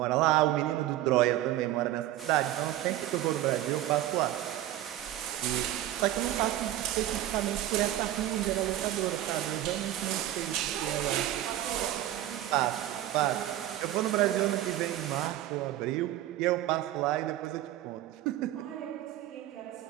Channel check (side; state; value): left; quieter; 13.7 dB